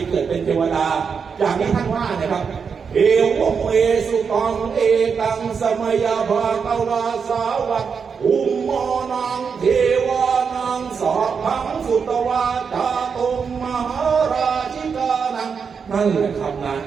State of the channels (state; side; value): quieter; left; 6.1 dB